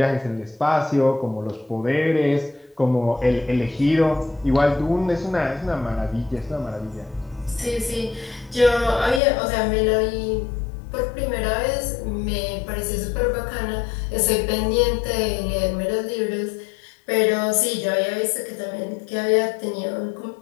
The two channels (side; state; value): right; drops out; at 9.2 s